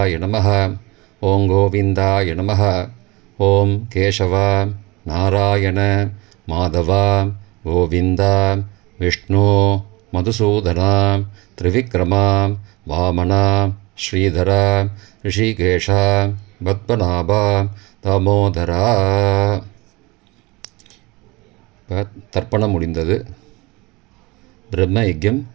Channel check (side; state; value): left; quieter; 23.8 dB